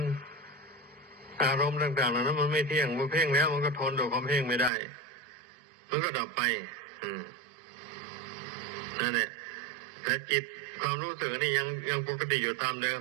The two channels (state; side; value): drops out; left; at 4.7 s